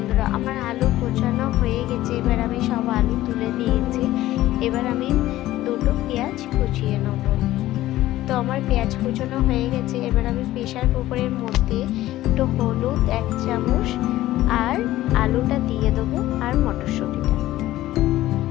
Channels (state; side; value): quieter; right; 15.3 dB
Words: আমার আলু কোচানো হয়ে গেছে। এবার আমি সব আলু তুলে নিয়েছি। এবার আমি দুটো পেঁয়াজ কুচিয়ে নেব। তো আমার পেঁয়াজ কুচানো হয়ে গেছে। এবার আমি প্রেসার কুকারের মধ্যে একটু হলুদ 1 চামচ আর আলুটা দিয়ে দেবো আর মটরশুঁটিটা।